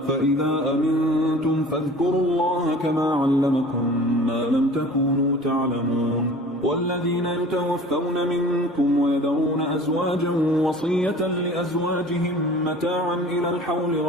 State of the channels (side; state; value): both; normal; correlation 0.44